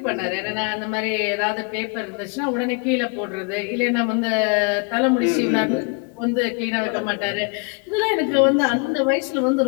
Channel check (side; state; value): right; quieter; 34.3 dB